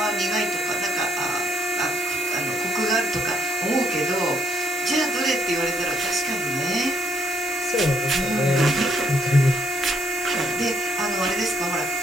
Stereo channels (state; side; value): normal; both; correlation 0.71